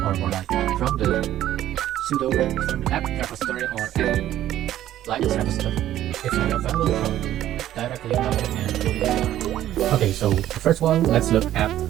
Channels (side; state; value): left; quieter; 12.7 dB